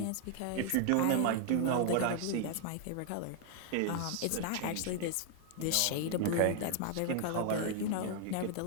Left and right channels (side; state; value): both; different; correlation 0.00